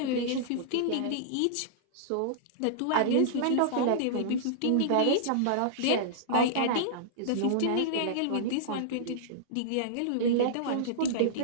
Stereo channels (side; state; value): both; different; correlation -0.02